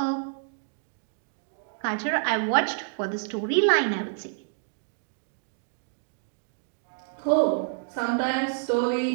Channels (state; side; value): silent; left; digital silence